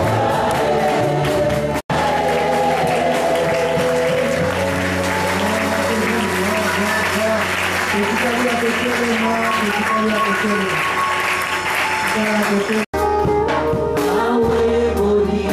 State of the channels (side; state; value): both; identical; correlation 1.00